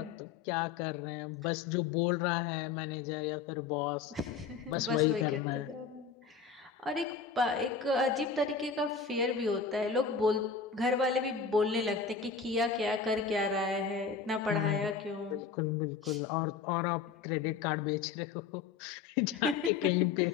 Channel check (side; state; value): right; quieter; 5.6 dB